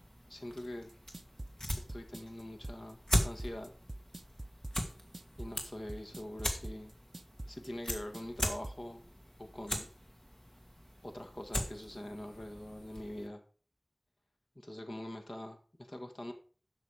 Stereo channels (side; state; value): both; normal; correlation 0.95